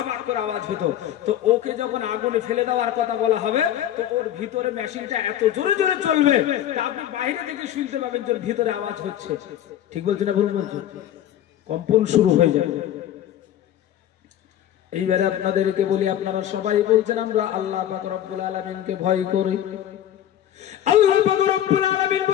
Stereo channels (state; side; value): quieter; right; 11.4 dB